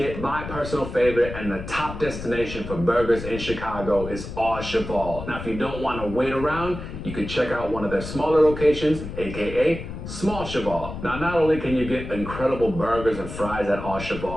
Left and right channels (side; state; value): left; noise; rumble, 9 dB below the sound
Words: My personal favorite and the top destination for burgers in Chicago is Au Cheval. Now, if you don't want to wait around, you can check out one of their smaller locations, aka Small Cheval. Now, not only can you get incredible burgers and fries at Au